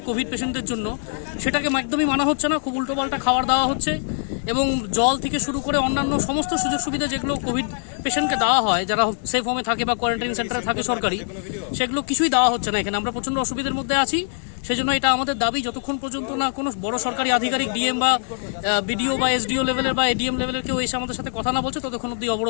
কোভিড পেশেন্টদের জন্য, সেটাকে একদমই মানা হচ্ছে না। খুব উল্টোপাল্টা খাবার দেওয়া হচ্ছে এবং জল থেকে শুরু করে অন্যান্য সমস্ত সুযোগ সুবিধা যেগুলো কোভিড পেশেন্টকে দেওয়া হয় যারা সেফ হোমে থাকে বা কোয়ারেন্টাইন সেন্টারে থাকে সরকারি, সেগুলো কিছুই দেওয়া হচ্ছে না এখানে। আমরা প্রচণ্ড অসুবিধার মধ্যে আছি। সেই জন্য এটা আমাদের দাবি, যতক্ষণ পর্যন্ত না কোনো বড় সরকারি আধিকারিক ডিএম বা বিডিও বা এসডিও লেভেলের বা এডিএম লেভেলের কেউ এসে আমাদের সাথে কথা না বলছে, ততক্ষণ অব্দি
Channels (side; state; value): right; silent; 64 dB below the other